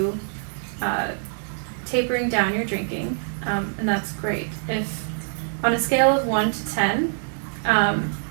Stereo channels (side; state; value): left; silent; digital silence